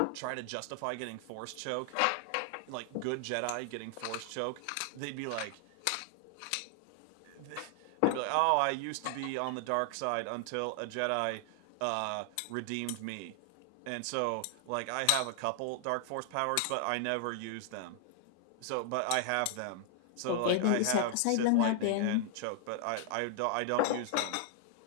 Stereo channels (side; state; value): both; different; correlation 0.00